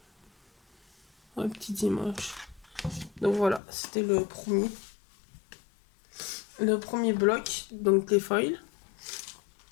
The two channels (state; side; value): drops out; right; at 3.6 s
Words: Ouais, petites images. Donc voilà, c'était le premier. Le premier bloc, donc les foils.